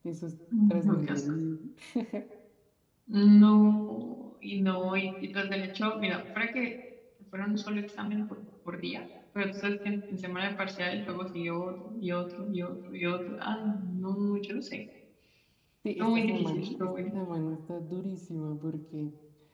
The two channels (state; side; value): identical; both; correlation 1.00